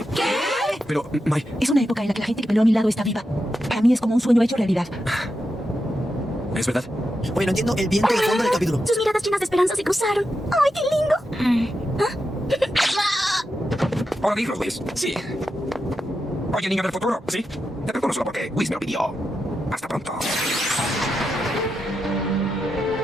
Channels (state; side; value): normal; both; correlation 0.87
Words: Pero, Mai, Es una época en la que la gente que peleó a mi lado está viva. Para mí es como un sueño hecho realidad. ¿Es verdad? Oye, no entiendo el viento de fondo del capítulo. Sus miradas llenas de esperanza se cruzaron. ¡Ay, qué lindo! ¿puedo digo, Whis? Sí. Oye, niño del futuro. ¿Sí? Te perdono solo porque Whis me lo pidió. Hasta pronto.